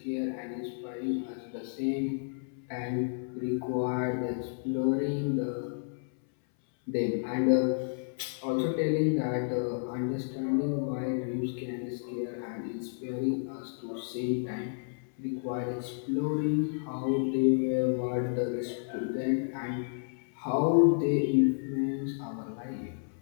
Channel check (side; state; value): right; silent; 57 dB below the other